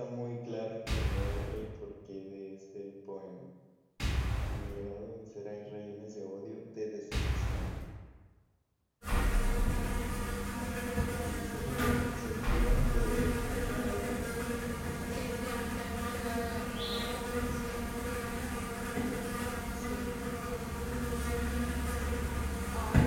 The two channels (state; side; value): identical; both; correlation 1.00